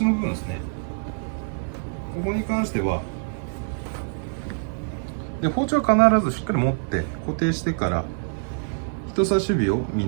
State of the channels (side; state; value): left; silent; digital silence